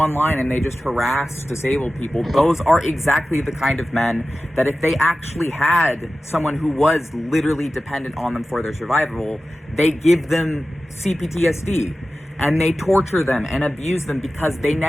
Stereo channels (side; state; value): both; normal; correlation 0.94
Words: and they just harass disabled people. Those are exactly the kind of men that if they actually had someone who was literally dependent on them for their survival, they give them CPTSD and they torture them and abuse them because they